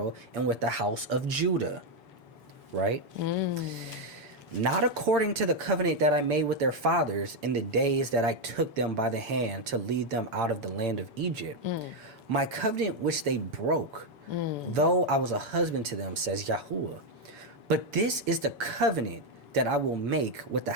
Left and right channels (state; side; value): late; left; 7.0 ms